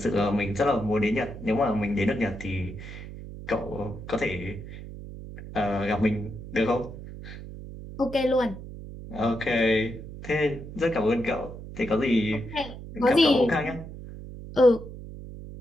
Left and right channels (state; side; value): noise; right; hum, 12 dB below the sound